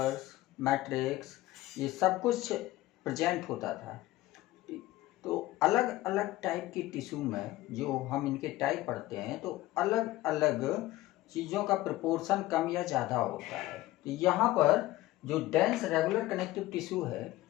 मैट्रिक्स ये सब कुछ प्रेजेंट होता था, तो अलग अलग टाइप की टिश्यू में जो हम इनके टाइप पढ़ते हैं तो अलग अलग चीज़ों का प्रोपोर्शन कम या ज़्यादा होता है। तो यहाँ पर जो डेंस रेगुलर कनेक्टिव टिश्यू है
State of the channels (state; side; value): quieter; right; 17.1 dB